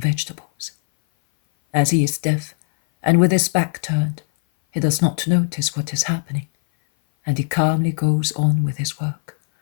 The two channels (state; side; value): silent; right; 58 dB below the other